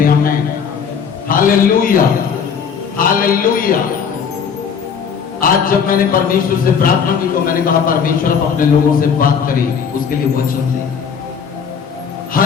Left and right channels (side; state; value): right; quieter; 6.7 dB